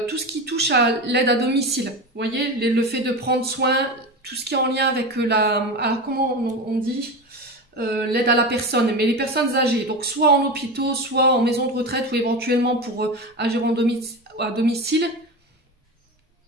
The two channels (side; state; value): both; normal; correlation 0.24